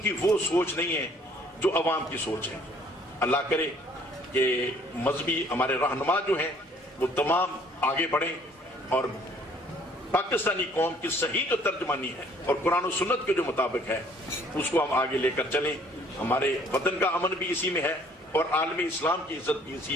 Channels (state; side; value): normal; both; correlation 0.59